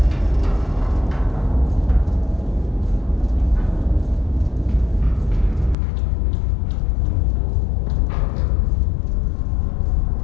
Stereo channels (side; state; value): right; drops out; at 5.8 s